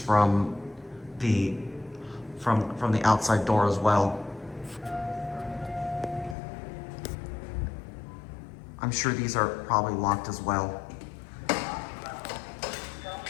the outside door as well. I'm sure these are probably locked as well.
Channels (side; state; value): right; drops out; at 6.4 s